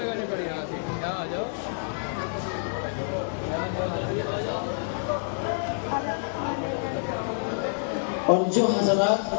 اور جو حضرات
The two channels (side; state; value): right; silent; digital silence